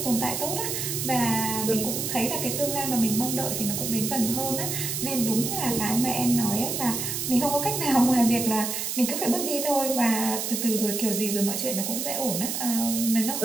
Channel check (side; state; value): right; noise; hiss, 2 dB below the sound